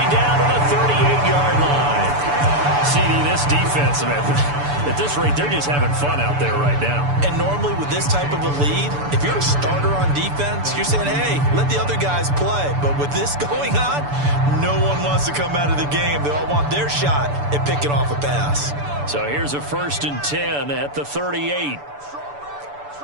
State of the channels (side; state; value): left; late; 6.9 ms